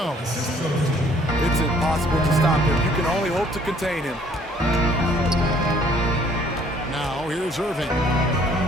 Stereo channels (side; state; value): both; normal; correlation 0.60